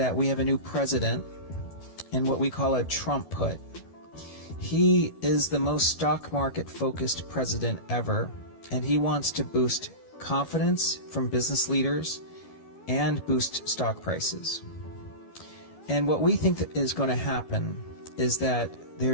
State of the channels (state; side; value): late; right; 12 ms